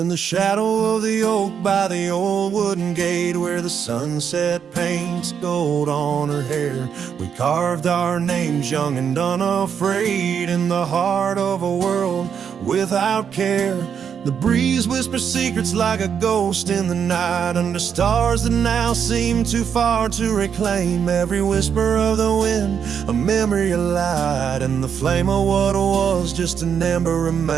the shadow of the oak by the old wooden gate, where the sunset paints gold on her hair, we carved our names young and unafraid in the heart of a world without care. The breeze whispers secrets like a ghost in the night, under stars that now seem too far to reclaim. Every whisper of the wind, a memory of light, and the flame of what was just an ember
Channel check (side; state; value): left; quieter; 7.5 dB